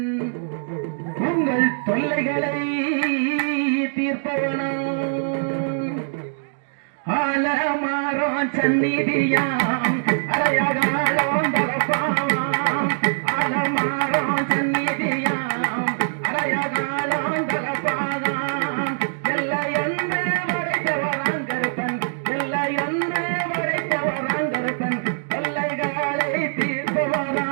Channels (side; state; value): left; silent; digital silence